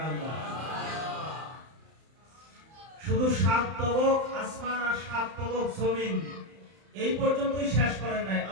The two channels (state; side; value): late; left; 31 ms